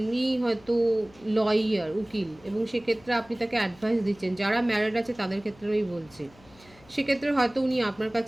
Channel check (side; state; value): left; noise; hum, 26 dB below the sound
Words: হয়তো লয়ার, উকিল, এবং সেক্ষেত্রে আপনি তাকে অ্যাডভাইস দিচ্ছেন। যারা ম্যারিড আছে তাদের ক্ষেত্রে আমি বলছি, সেক্ষেত্রে হয়তো উনি আপনার